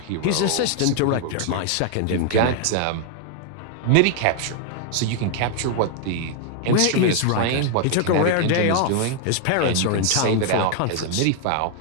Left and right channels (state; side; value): different; both; correlation 0.00